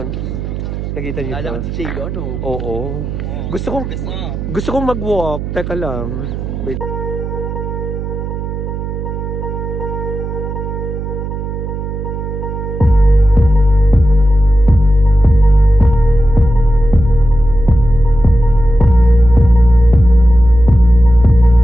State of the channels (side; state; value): right; noise; hum, 6 dB below the sound